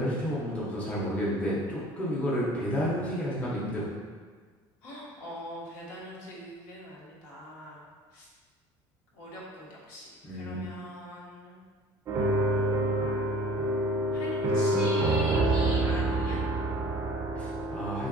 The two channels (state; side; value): normal; both; correlation 0.48